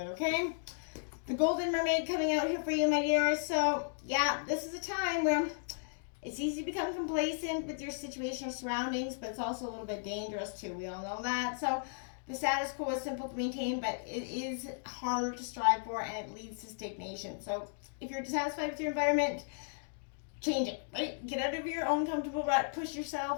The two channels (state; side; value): silent; right; digital silence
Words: okay? The Golden Mermaid coming out here for you, my dears. So, yeah, this is a time where it's easy to become complacent with your situation or surroundings, but it's also a little bit dangerous too. We all know that. So the status quo is simple to maintain, but it is harder to strive for, and it leads to stagnation. So if you're dissatisfied with your environment, change it, right? Get out of your own comfortable rut, push